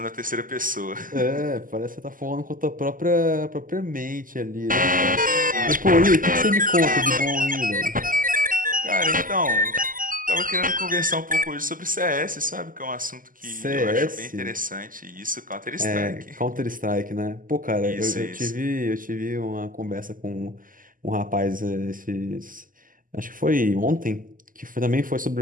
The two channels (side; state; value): left; late; 0.40 ms